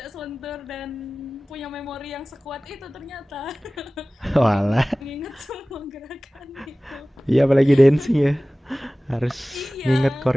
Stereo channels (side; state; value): both; normal; correlation 0.98